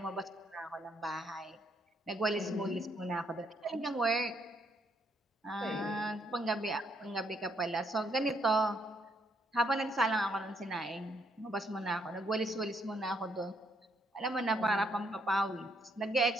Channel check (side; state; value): both; normal; correlation 0.73